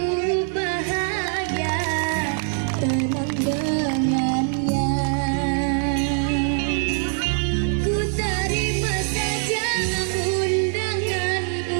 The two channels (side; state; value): left; silent; 63 dB below the other